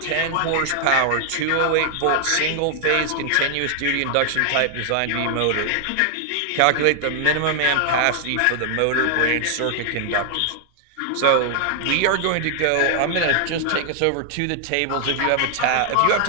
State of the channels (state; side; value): different; both; correlation 0.00